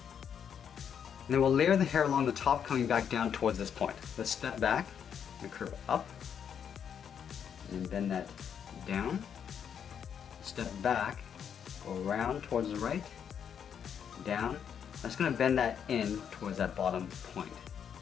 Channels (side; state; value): right; quieter; 8.0 dB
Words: And then we'll layer the hair along the top, coming back down towards this point. Let's step back and curve up, and then bend that down. Step back, go around towards the right, down. I'm just going to bend that in towards that bottom point.